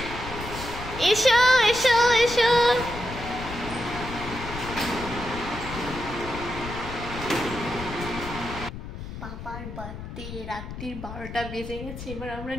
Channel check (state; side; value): noise; left; rumble, 10 dB below the sound